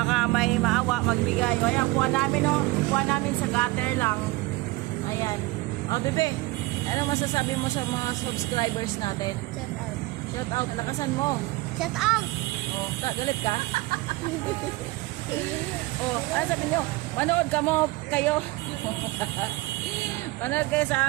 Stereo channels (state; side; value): quieter; left; 20.9 dB